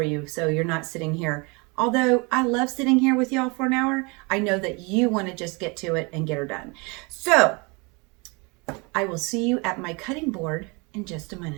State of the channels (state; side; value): quieter; left; 28.9 dB